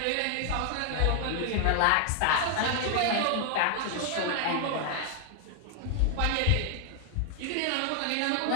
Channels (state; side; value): different; both; correlation 0.00